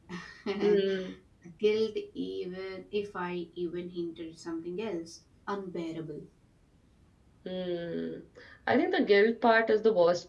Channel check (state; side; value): identical; both; correlation 1.00